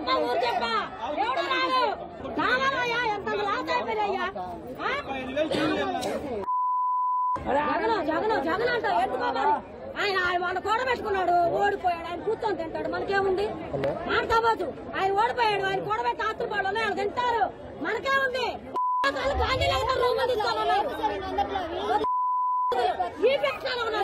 ఊరు చెప్ప. ఎవడు రాడు? రావాలయ్యా, ఎంత లాస్ అయిపోయాయ్యా. జగన్ అంట ఎందుకోవాలి? ఆయన వాళ్ళు కూడబెట్టుకున్నాడు, ఓడిపోయాడు. ఆయన కూర్చొని తింటాడు, మనకేముంది? మాట్లాడవచ్చు. ఆయన ఓడిపోయాడు, ఆయన కూడబెట్టి ఆస్తులు ఆయన తింటారు, మనకేముంది? గాంధీనగర్ రూములు తీసుకోవాలన్నారు,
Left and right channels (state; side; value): identical; both; correlation 1.00